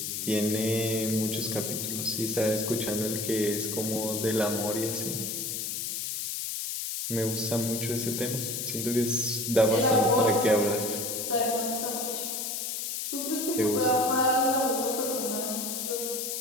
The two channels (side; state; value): left; noise; hiss, 3 dB below the sound